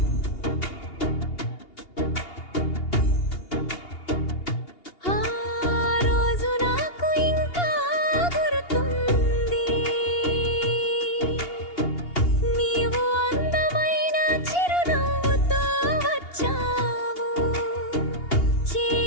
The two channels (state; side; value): late; right; 2.8 ms